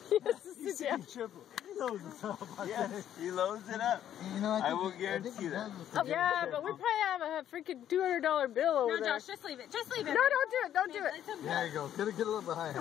He has to sit down. He loads it up. Yes, he loads it up. You know, I will guarantee that. Yeah, but we probably have a freaking $200 bill over No, there. Josh, just leave it. Just leave it. No, don't do it. Don't do it. There you go. Get a little bit higher.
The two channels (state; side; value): quieter; right; 10.7 dB